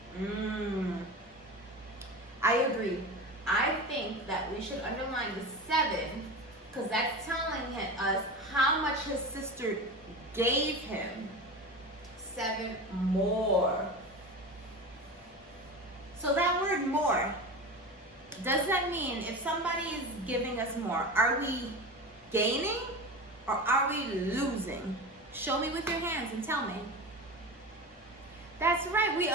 I agree. I think that we should underline the 7 because that's telling us how much his sister gave him. 7 more. So that word more, does that mean if somebody is giving us more, are we gaining or are we losing? Show me with your hands and tell me. That's right, we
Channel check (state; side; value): normal; both; correlation 0.28